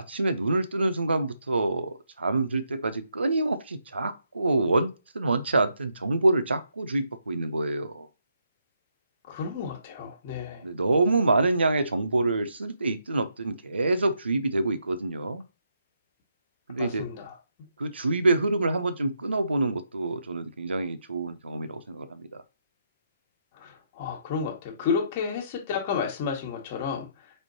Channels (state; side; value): inverted; both; correlation -0.77